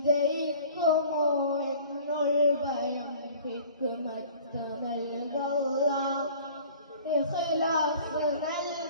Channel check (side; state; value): both; inverted; correlation -0.47